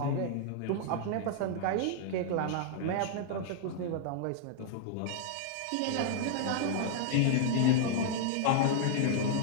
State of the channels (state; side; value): different; both; correlation -0.01